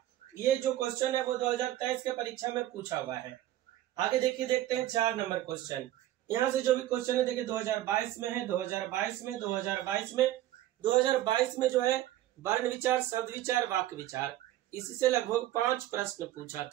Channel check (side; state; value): left; quieter; 13.9 dB